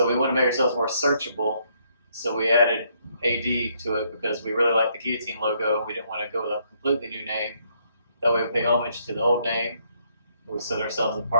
we wanted to make ourselves more searchable. So we added AD to it because we really liked the Guillotine logo. We didn't want to go with a completely new name. That way we pay homage to the old name. We set ourselves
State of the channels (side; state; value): both; inverted; correlation -0.71